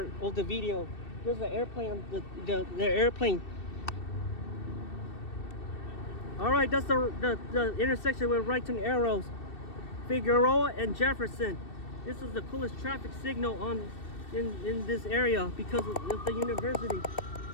of the video. There's the airplane, the airplane. All right, that's the intersection with right turn arrows. Figueroa and Jefferson. This is the coolest traffic signal in this area because of the university.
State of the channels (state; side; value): late; right; 2.7 ms